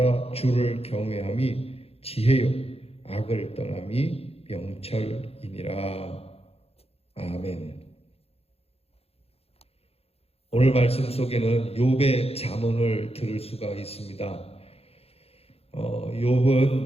주를 경외함이 지혜요 악을 떠남이 명철이니라. 아멘. 오늘 말씀 속에는 욥의 잠언을 들을 수가 있습니다.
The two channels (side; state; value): right; late; 0.29 ms